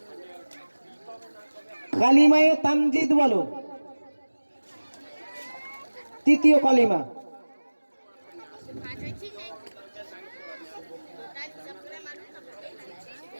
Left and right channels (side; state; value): both; inverted; correlation -1.00